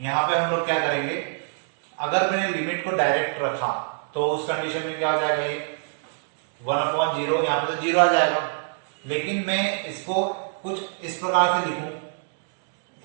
पे हम लोग क्या करेंगे, अगर मैंने लिमिट को डायरेक्ट रखा तो उस कंडीशन में क्या हो जाएगा, ये 1/0, यहाँ पे तो 0 आ जाएगा। लेकिन मैं इसको कुछ इस प्रकार से लिखूं,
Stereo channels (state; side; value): silent; left; digital silence